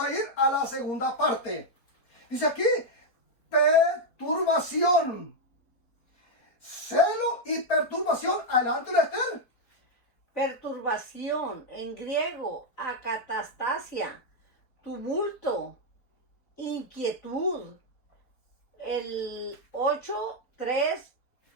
ir a la segunda parte. Dice aquí, perturbación. Celo y perturbación. Adelante, Esther. Perturbación, en griego, acatastasia, tumulto, inquietud. El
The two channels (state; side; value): late; right; 4.2 ms